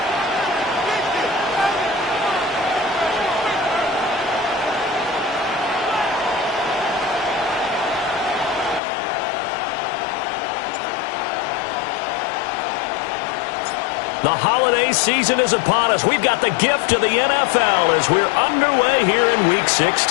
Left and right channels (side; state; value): right; drops out; at 8.8 s